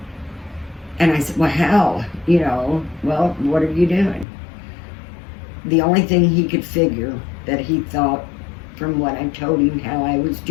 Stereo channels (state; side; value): drops out; right; at 4.2 s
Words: And I said, "Well, how? Well, what are you doing?" The only thing he could figure that he thought, from what I told him how I was